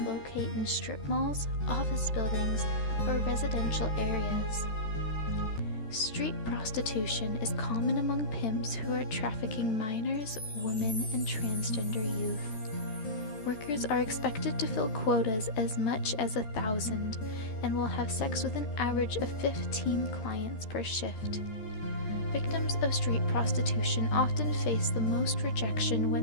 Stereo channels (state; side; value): late; right; 13 ms